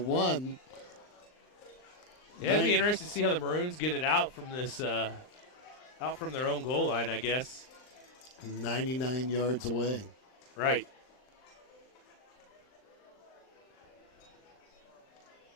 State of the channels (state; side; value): late; right; 39 ms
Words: Yeah, it'd be interesting to see how the Maroons get it out from this, out from their own goal line, I guess. 99 yards away. Right.